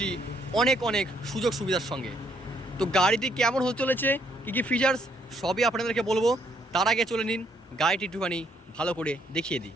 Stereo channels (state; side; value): normal; both; correlation 0.70